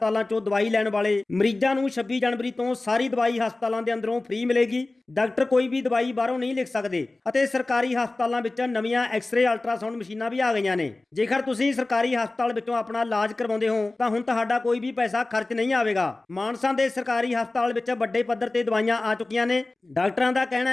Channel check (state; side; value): quieter; right; 3.1 dB